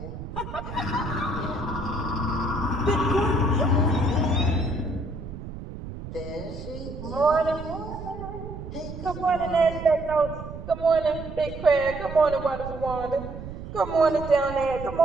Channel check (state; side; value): noise; right; rumble, 10 dB below the sound